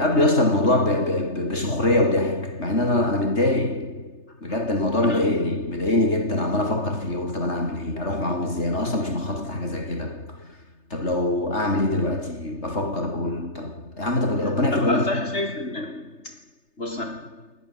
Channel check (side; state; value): right; late; 3.3 ms